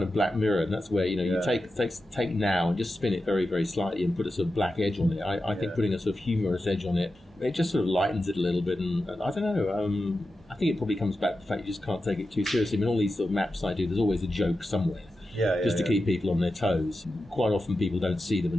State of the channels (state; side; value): normal; both; correlation 0.91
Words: of Black Mirror, and that's where you take now and just spin it very, very slightly and put a sort of black edge on it. I think putting a sort of humorous edge on it just sort of lightens it a little bit, and I don't know. I think it probably comes back to the fact you just can't take it too seriously. I mean, all these sort of maps I do, there's always a joke somewhere. Just to keep people on their toes. Quite often people don't see them